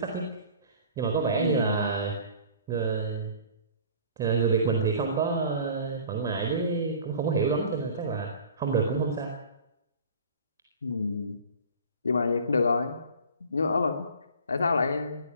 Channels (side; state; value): both; inverted; correlation -0.43